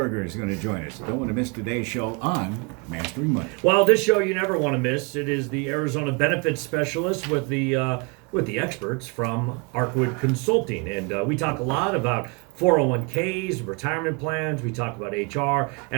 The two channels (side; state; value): left; quieter; 31.2 dB